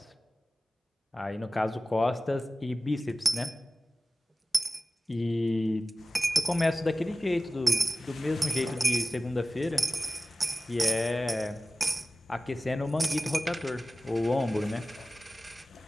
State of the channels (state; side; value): normal; both; correlation 0.96